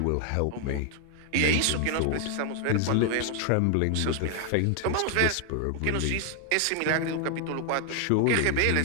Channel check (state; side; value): different; both; correlation 0.00